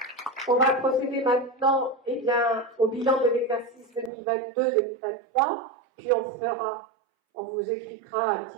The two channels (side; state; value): left; drops out; at 4.1 s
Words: on va procéder maintenant au bilan de l'exercice 2022-2023, puis on vous expliquera un